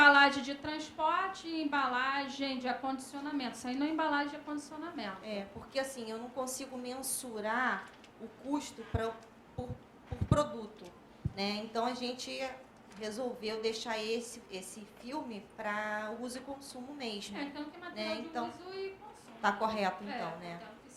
de transporte e embalagem de acondicionamento. Isso aí não é embalagem de acondicionamento. Porque assim, eu não consigo mensurar o custo por produto. Né? Então, a gente resolveu deixar esse filme para uso e consumo mesmo. Então, que é material de uso e consumo. Está correto, então, né? Então, que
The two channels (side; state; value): both; identical; correlation 1.00